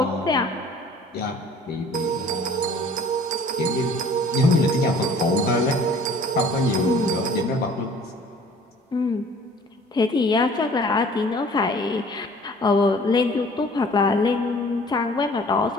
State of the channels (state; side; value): normal; both; correlation 0.51